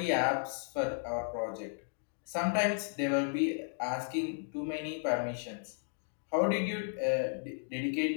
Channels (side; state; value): right; silent; digital silence